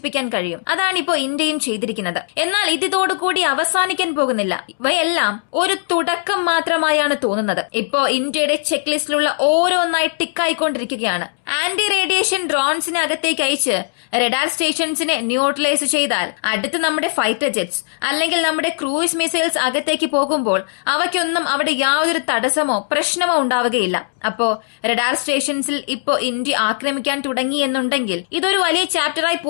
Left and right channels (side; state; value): right; silent; 67 dB below the other